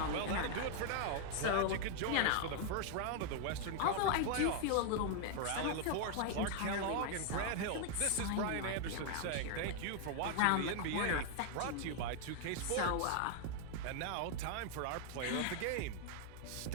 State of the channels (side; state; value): both; different; correlation 0.00